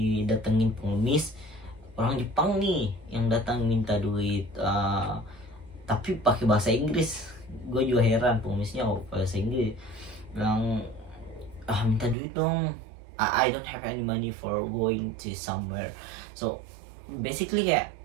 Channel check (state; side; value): drops out; left; at 12.2 s